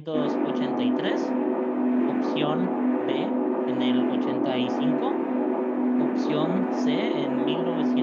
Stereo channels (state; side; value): identical; both; correlation 1.00